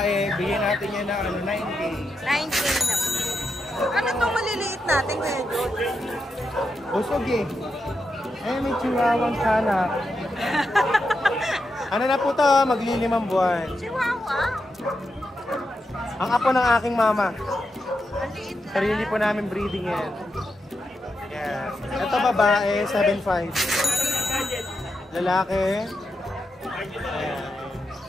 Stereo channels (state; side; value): normal; both; correlation 0.86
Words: bigyan natin yan na 9K. 9K na. Ano itong maliliit natin ngayon? Busog eh. May chihuahuang kanak. Ano na po to? Maglilimang buwan. Chihuahua. Ang apo ng aking mama. Ang liit na. Sarili po namin breeding yan. Yes. Ito babae, 7'5". Lalaki. Ayan.